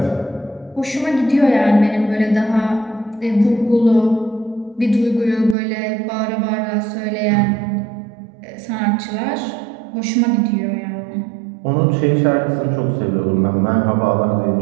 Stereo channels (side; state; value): left; drops out; at 5.6 s